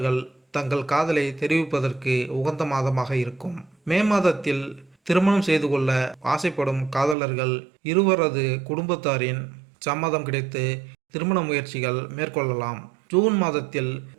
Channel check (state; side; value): drops out; left; at 7.2 s